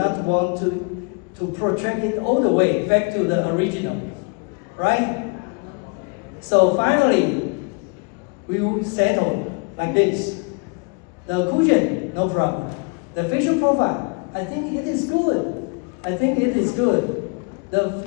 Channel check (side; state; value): right; quieter; 33.4 dB